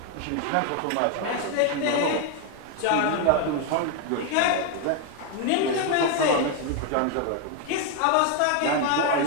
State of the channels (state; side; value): different; both; correlation 0.01